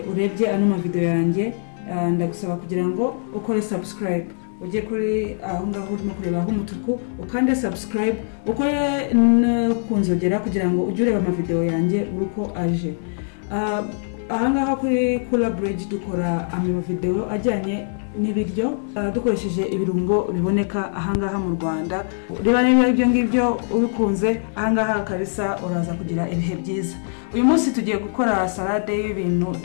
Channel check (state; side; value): silent; right; digital silence